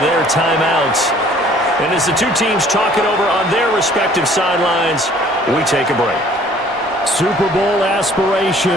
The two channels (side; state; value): both; normal; correlation 0.55